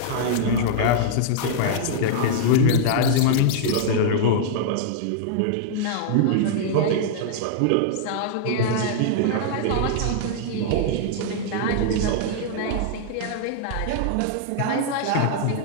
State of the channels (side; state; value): both; different; correlation -0.01